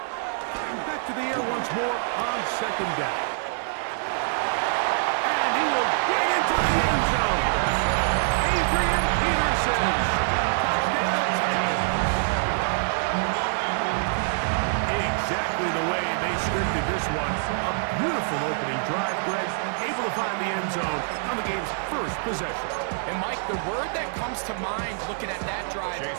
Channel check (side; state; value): left; silent; digital silence